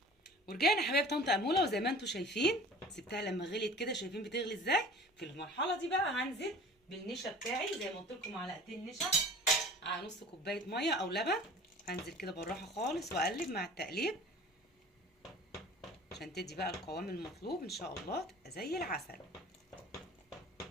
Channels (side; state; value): both; normal; correlation 0.44